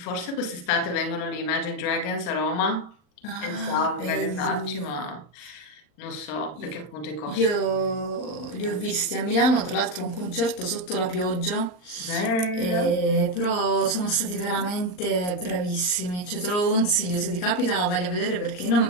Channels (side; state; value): right; late; 39 ms